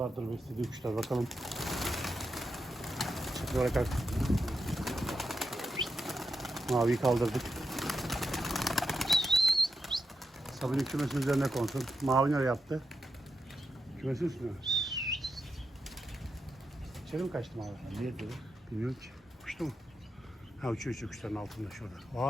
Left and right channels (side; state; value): both; normal; correlation 0.86